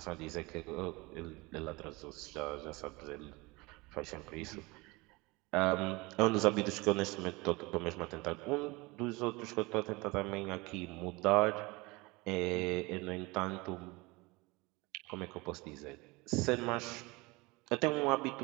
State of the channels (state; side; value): quieter; left; 24.2 dB